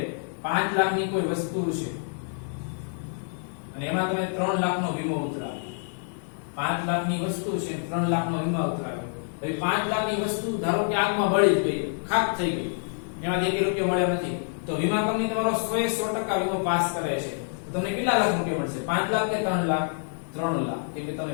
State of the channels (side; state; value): right; silent; digital silence